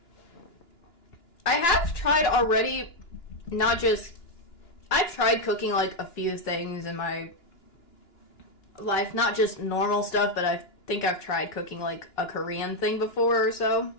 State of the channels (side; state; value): right; late; 2.9 ms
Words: I have tried already, I've tried cooking like a few things in my life, not just normal stuff, but I think I've tried cooking like a Korean thing before or so.